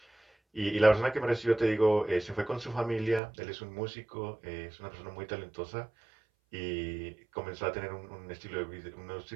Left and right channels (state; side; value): drops out; left; at 3.2 s